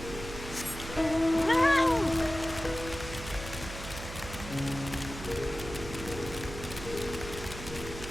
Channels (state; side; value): noise; right; hum, 10 dB below the sound